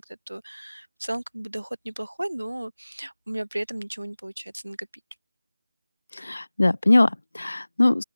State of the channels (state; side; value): inverted; both; correlation -1.00